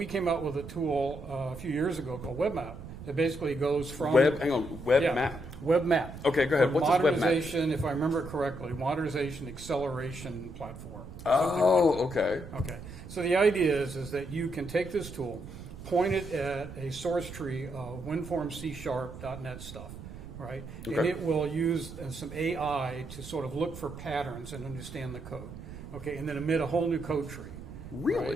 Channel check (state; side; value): noise; right; rumble, 12 dB below the sound